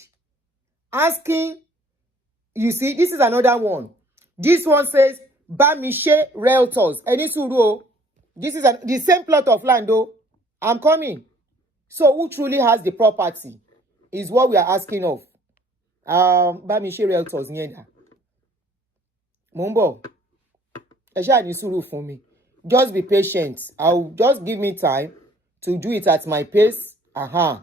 asking. You see, this is another one. This one says, Bamishe Realtors. Eni suru. This is the same plot of land, though. I'm coming. So, who truly has the property is what we are asking of. Bamishe Realtors. Nyenda. Mumbo. Esha ni suru for me. Just be patient. I'll just give me time to do it at my pace.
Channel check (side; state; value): both; normal; correlation 0.58